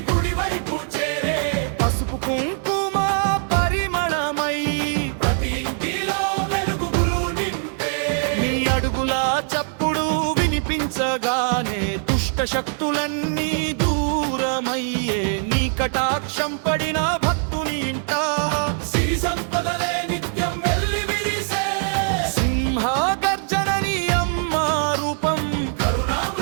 గుడివైపు చేరే, పసుపు కుంకుమ పరిమళమై ప్రతి ఇంటిలో వెలుగులు నింపే. నీ అడుగుల చప్పుడు వినిపించగానే దుష్ట శక్తులన్నీ దూరమయ్యే, నీ కటాక్షం పడిన భక్తుని ఇంట సిరి సంపదలే నిత్యం వెల్లి విరిసే. సింహ గర్జనని అమ్మ రూపం,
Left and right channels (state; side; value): silent; left; 56 dB below the other